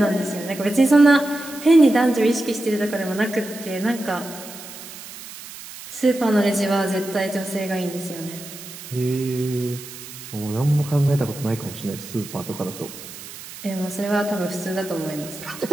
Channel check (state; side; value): noise; right; hiss, 14 dB below the sound